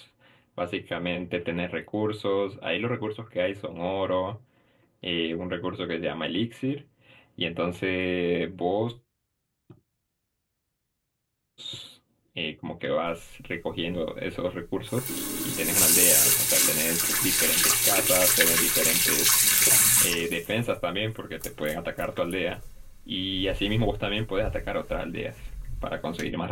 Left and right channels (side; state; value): both; identical; correlation 1.00